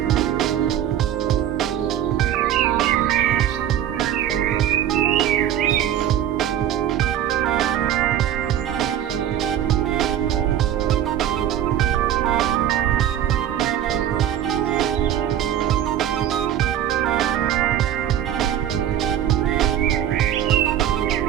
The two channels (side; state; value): left; quieter; 10.7 dB